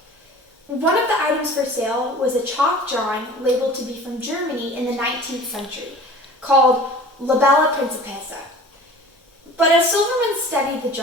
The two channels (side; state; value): both; normal; correlation 0.43